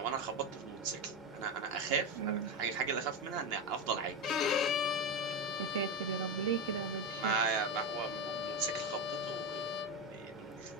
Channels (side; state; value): both; normal; correlation 0.14